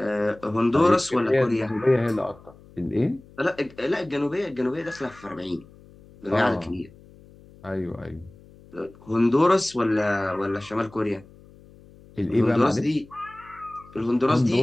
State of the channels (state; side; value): noise; left; hum, 24 dB below the sound